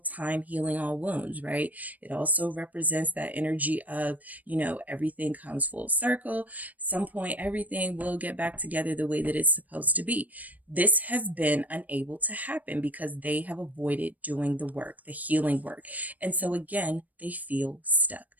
healing all wounds, right? It also represents that energy of, everything comes full circle. Some point, everything will get back together the way that it's supposed to be. This has been unable to happen because they have avoided doing the work, the healing work. And so again, they feel stuck.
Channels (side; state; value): left; late; 0.077 ms